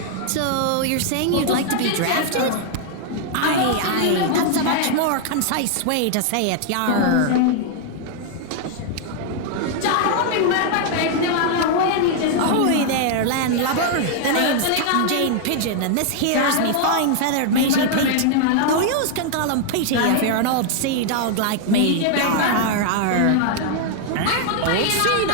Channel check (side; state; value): both; different; correlation 0.00